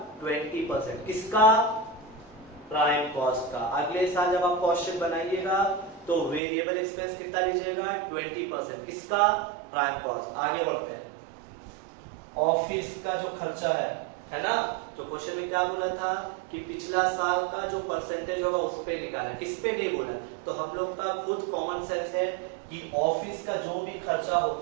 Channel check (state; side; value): drops out; left; at 6.4 s